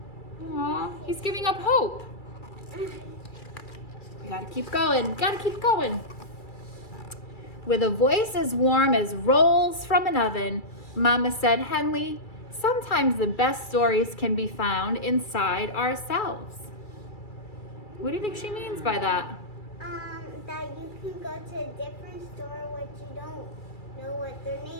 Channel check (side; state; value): right; late; 2.3 ms